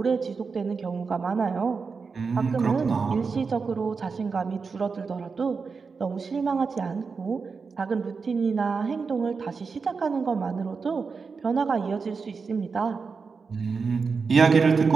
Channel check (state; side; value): quieter; left; 5.0 dB